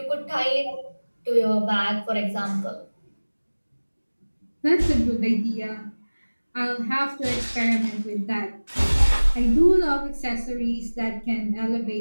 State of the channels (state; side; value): inverted; both; correlation -1.00